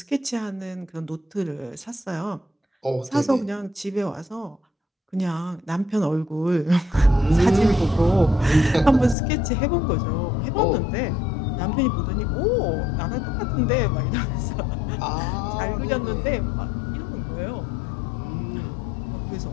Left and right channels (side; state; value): right; drops out; at 9.2 s